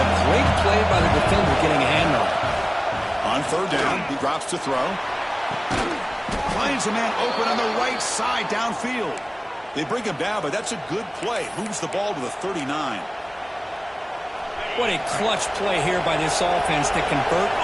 great play by the defender getting a hand on it. On 3rd down, he drops to throw. Finds a man open on the right side downfield. They bring him down, but that's a good play. Moves the ball to the 39. What a clutch play here by this offense to convert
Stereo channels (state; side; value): identical; both; correlation 1.00